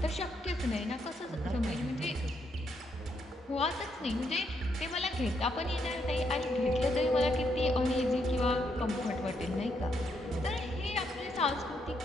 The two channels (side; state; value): both; normal; correlation 0.77